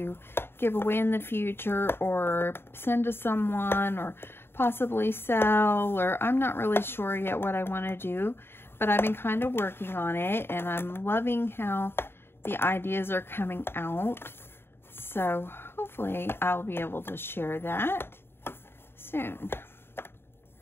give away in the future, or send to someone, or possibly sell, or I'm not really sure yet what I want to do. But I've been kind of working on it, and I'm loving how the ideas are coming out. So hopefully I'll be able to share that soon.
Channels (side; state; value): right; late; 0.11 ms